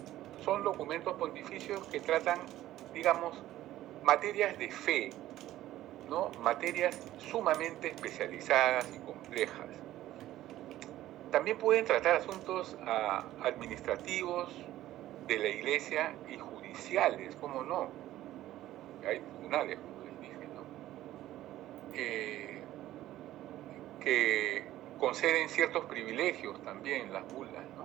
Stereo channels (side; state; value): left; quieter; 14.2 dB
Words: son documentos pontificios que tratan, digamos, materias de fe, ¿no? Materias sumamente especializadas y complejas. También pueden tratar asuntos administrativos de la Iglesia y judiciales, ¿cómo no? Hay tribunales, como les dije, ¿no? Que conceden ciertos privilegios también las bulas,